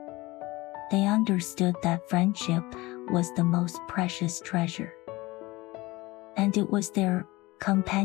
They understood that friendship was the most precious treasure, and it was their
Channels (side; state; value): right; quieter; 20.9 dB